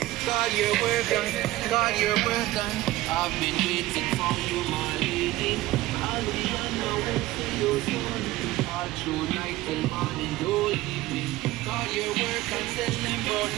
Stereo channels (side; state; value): left; quieter; 17.1 dB